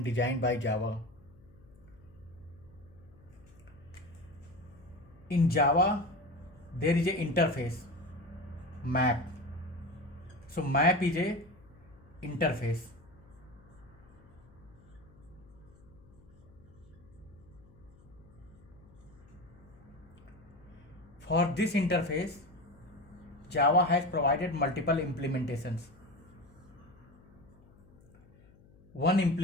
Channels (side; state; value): left; noise; hum, 25 dB below the sound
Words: designed by Java. In Java, there is a interface map. So map is a interface. For this interface, Java has provided multiple implementations. One